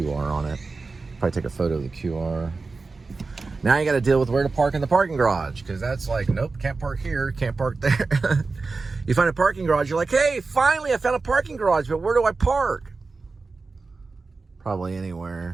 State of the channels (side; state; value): left; quieter; 4.0 dB